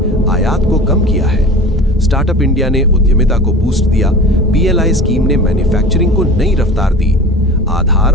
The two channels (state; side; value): normal; both; correlation 0.37